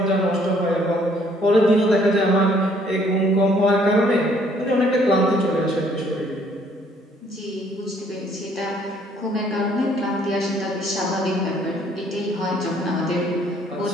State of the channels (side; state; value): both; normal; correlation 0.63